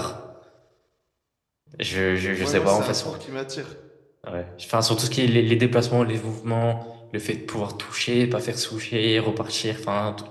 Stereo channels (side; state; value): both; identical; correlation 1.00